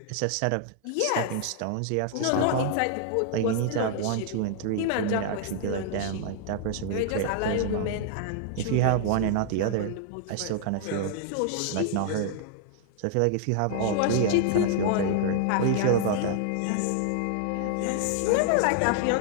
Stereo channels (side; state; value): both; different; correlation -0.01